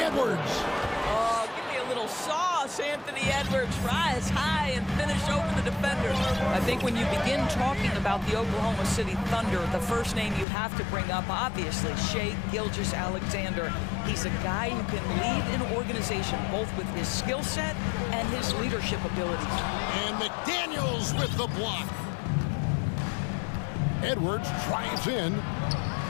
Oh, give me a little sauce, Anthony Edwards. Rise high and finish over the defender. I think when you begin talking about the Oklahoma City Thunder, the first name you have to bring up, obviously, Shai Gilgeous-Alexander. He's a guy who can lead an organization both with his skill set and his leadership abilities. And McDaniels with the block. Edwards drives in.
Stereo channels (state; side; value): drops out; right; at 10.5 s